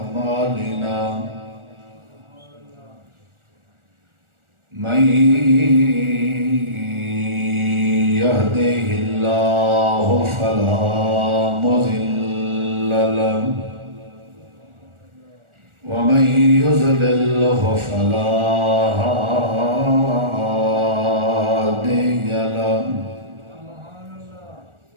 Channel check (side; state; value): left; late; 1.4 ms